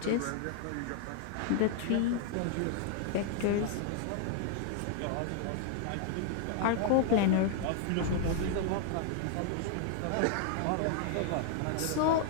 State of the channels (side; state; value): both; different; correlation 0.00